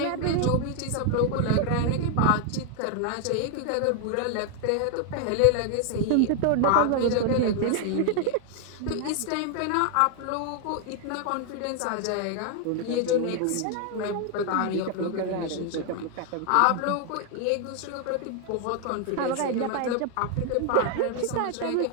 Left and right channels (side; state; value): both; different; correlation 0.00